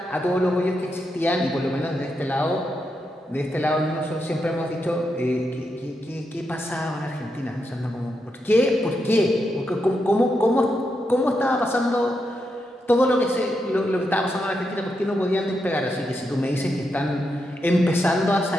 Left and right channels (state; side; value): normal; both; correlation 0.84